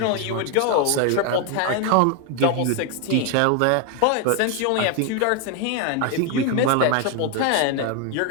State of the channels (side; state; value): both; different; correlation 0.01